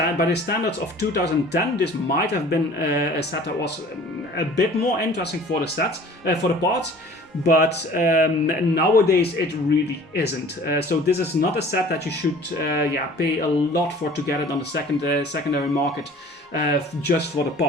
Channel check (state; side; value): normal; both; correlation 0.47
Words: of 2010, this might have been a set that was a bit more interesting for the parts. But nowadays it really isn't. So this is not a set that you should pay a lot for to get it on the secondary market just for the